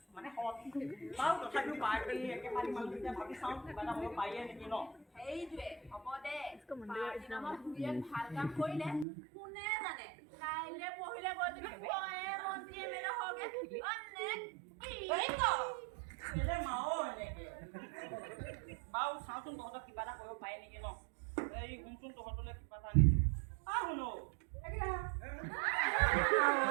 মানে হট বাউ তথাপিও পাৰ্টি একেবাৰে মানুহটো ভাবি চাওঁ কিবা এটা মই পাইয়ে নেকি ন সেইটোৱে হ'ব দে পাৰ্টি নামত দুয়ে ভাল কাম কৰিলে কোনে জানে কাইলে পঢ়িলে গৈ তুমি কয়ে মন্ত্ৰী এমএলএ হগে অনেক কি এলে মাও এনেকে বাউ চাউচোন তহঁতক কিবা এটা কৰিব পাই নেকি ন এই শুনচোন তহঁতলৈ কিবা এটা আনিছো শুনো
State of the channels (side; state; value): left; drops out; at 9.1 s